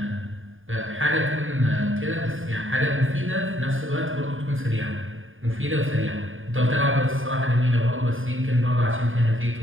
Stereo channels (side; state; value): left; late; 0.59 ms